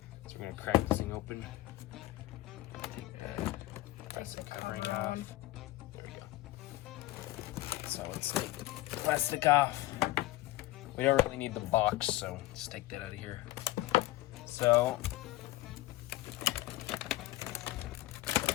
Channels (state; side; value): quieter; right; 17.4 dB